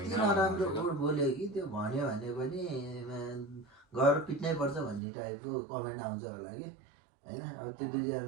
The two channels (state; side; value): drops out; left; at 5.0 s